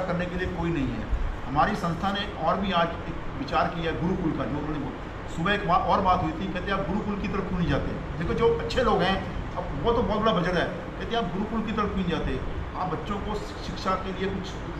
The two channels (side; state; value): both; identical; correlation 1.00